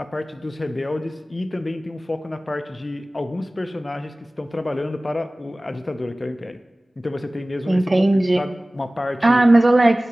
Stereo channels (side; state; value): both; normal; correlation 0.98